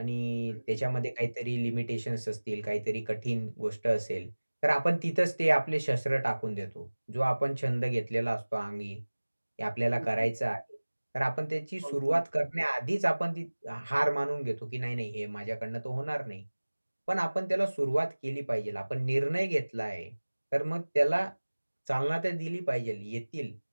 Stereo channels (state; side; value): inverted; both; correlation -1.00